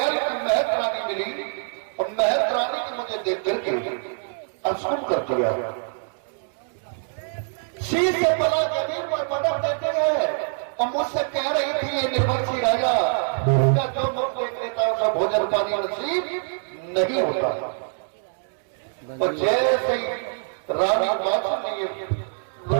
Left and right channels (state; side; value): silent; left; digital silence